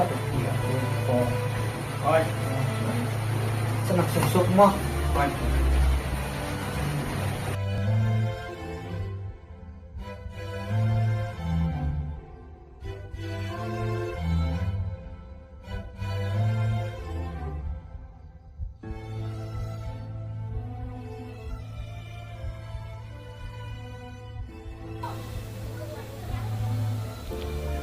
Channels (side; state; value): both; identical; correlation 1.00